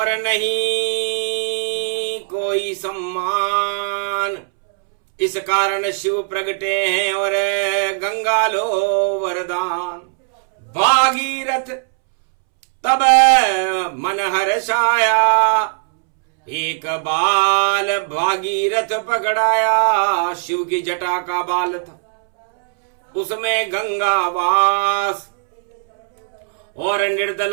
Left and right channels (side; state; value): left; silent; 67 dB below the other